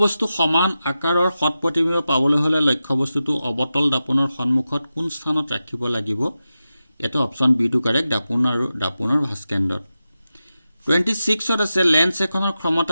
সমান আকাৰৰ সৎ প্ৰতিবিম্ব পাবলৈ হলে লক্ষ্যবস্তুটো অবতল দাপনৰ সন্মুখত কোন স্থানত ৰাখিব লাগিব এটা অপচন B2 কাৰেক্ট দাপনৰ ভাস্কেন্দ্ৰত 26 আছে লেন্স এখনৰ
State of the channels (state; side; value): inverted; both; correlation -0.92